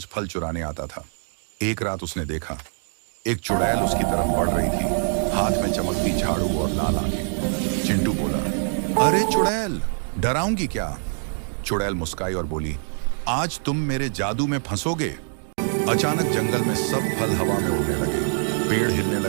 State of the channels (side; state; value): left; silent; 62 dB below the other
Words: फल चुराने आता था। एक रात उसने देखा एक चुड़ैल उसकी तरफ बढ़ रही थी, हाथ में चमकती झाड़ू और लाल आंखें। चिंटू बोला, अरे चुड़ैल, डराऊंगी क्या? चुड़ैल मुस्काई और बोली, आज तुम मेरे जादू में फंसोगे। अचानक जंगल में सब फल हवा में उड़ने लगे, पेड़ हिलने